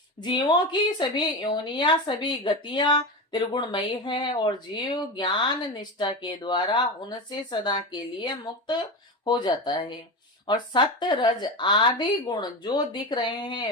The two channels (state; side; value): normal; both; correlation 0.22